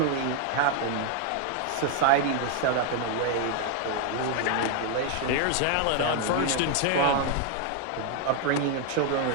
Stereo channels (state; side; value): different; both; correlation 0.01